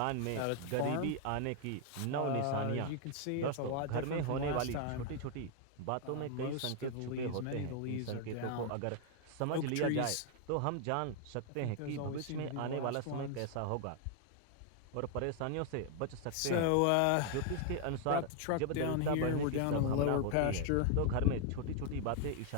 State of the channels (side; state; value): both; different; correlation 0.00